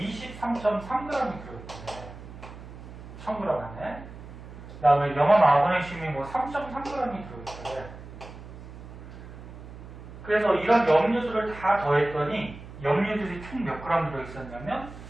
들어있대. 1000g 안에. 그 다음에 염화마그네슘이 뭐 3.3g이 들어있대. 그래서 이런 염류들을 다 더했더니 염류들이 총 몇 그램 들어있었냐면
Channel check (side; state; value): right; noise; hum, 15 dB below the sound